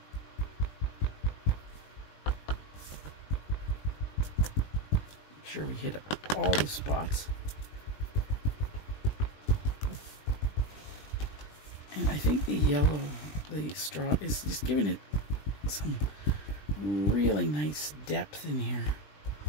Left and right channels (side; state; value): right; late; 20 ms